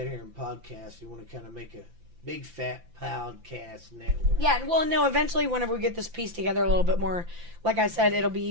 here and podcast. We want to kind of make a big fat podcast network. Yeah, well, no, eventually whenever we get this piece together a little bit more, like I said, it'll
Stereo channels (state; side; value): late; left; 5.9 ms